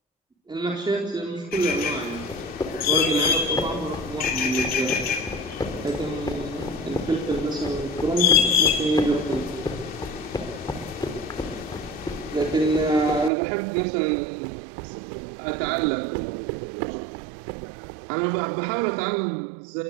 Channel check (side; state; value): left; drops out; at 13.3 s